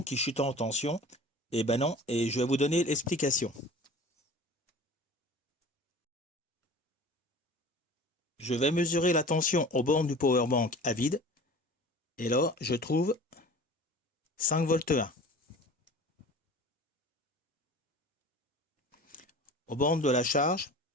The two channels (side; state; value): both; normal; correlation 0.41